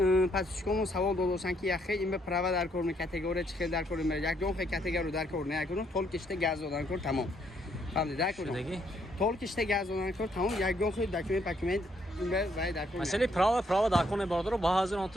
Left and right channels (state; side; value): normal; both; correlation 0.71